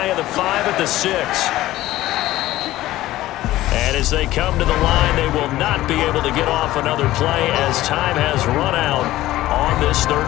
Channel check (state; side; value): quieter; right; 15.8 dB